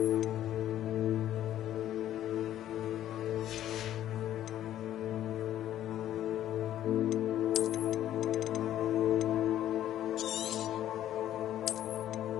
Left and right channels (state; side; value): quieter; right; 12.1 dB